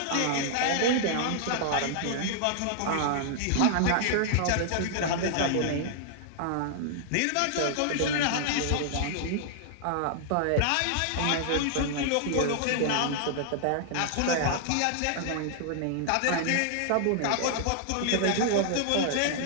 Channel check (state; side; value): different; both; correlation -0.01